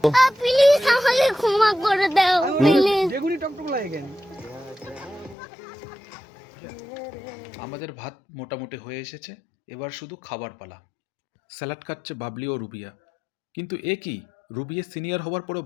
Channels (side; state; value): right; drops out; at 5.4 s